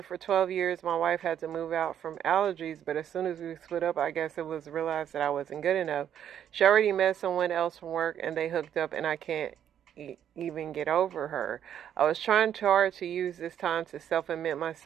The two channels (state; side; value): quieter; left; 9.7 dB